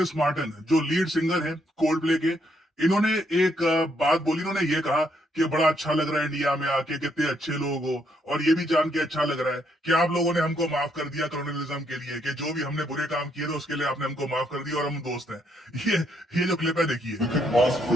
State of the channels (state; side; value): normal; both; correlation 0.73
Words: मार्टिन जो लीड सिंगर है कोल्ड प्ले के, इन्होंने एक बात बोली। इन्होंने ये कहा कि बड़ा अच्छा लग रहा है इंडिया में आके, कितने अच्छे लोग हो, और ये भी जान के अच्छा लग रहा है कि आप लोगों ने हमको माफ कर दिया कॉलोनियलिज्म के लिए, कि जो भी हमने बुरे काम किए थे उसके लिए आपने हमको माफ कर दिया और हम दोस्त हैं। ये जो क्लिप है, देखिए। We couldn't ask